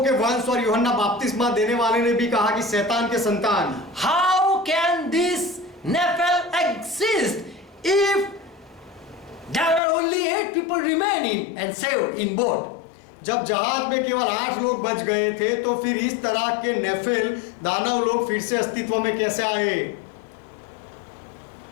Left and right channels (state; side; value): drops out; right; at 9.8 s